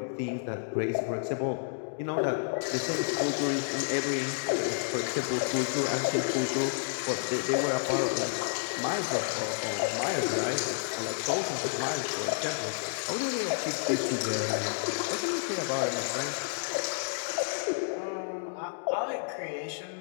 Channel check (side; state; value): right; silent; digital silence